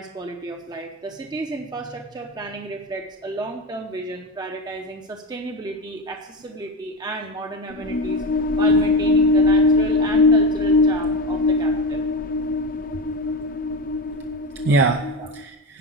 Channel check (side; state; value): both; normal; correlation 0.20